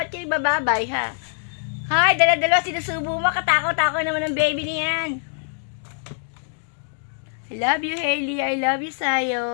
kayo bababay, ha? Hay, dala-dala sinusubo mo. Katakaw-takaw naman ang baby niyan. I love you, Hailey. I love you,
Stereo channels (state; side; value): silent; right; digital silence